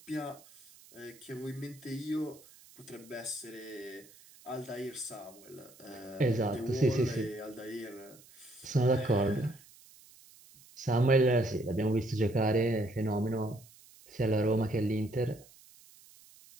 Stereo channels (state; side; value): noise; right; hiss, 24 dB below the sound